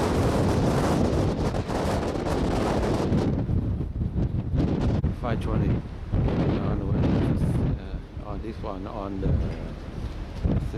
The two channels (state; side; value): identical; both; correlation 1.00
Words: On the way, on this one, on the